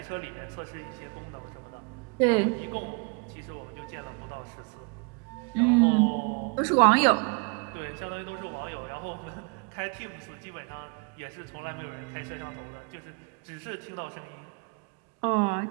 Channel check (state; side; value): quieter; left; 33.1 dB